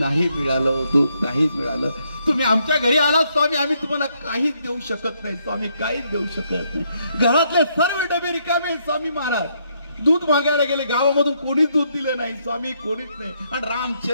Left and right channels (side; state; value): both; inverted; correlation -0.74